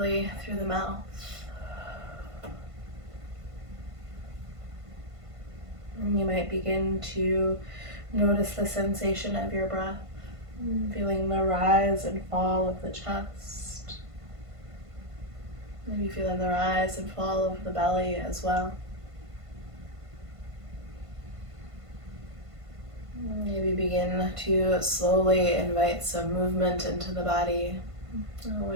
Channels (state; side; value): late; left; 1.5 ms